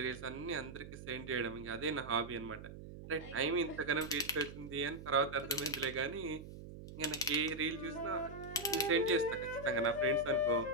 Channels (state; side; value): noise; right; hum, 13 dB below the sound